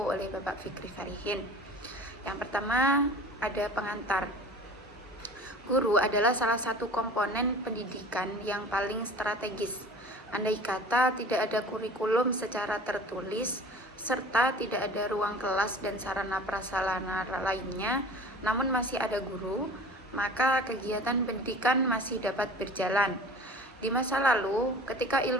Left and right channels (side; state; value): both; normal; correlation 0.41